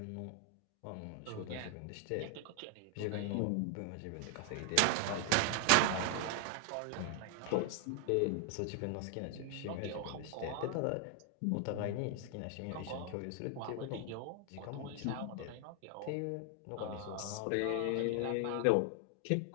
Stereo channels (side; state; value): both; different; correlation 0.00